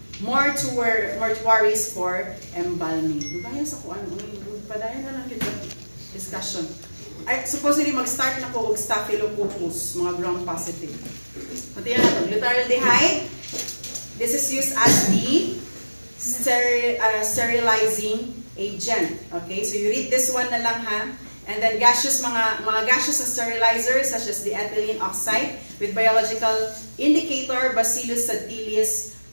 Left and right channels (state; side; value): inverted; both; correlation -1.00